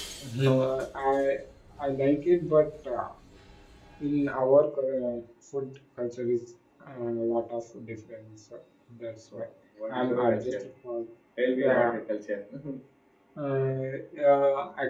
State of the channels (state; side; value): identical; both; correlation 1.00